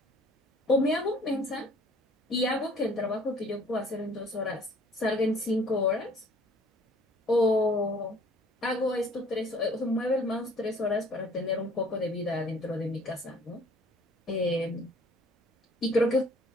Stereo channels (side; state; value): both; normal; correlation 0.54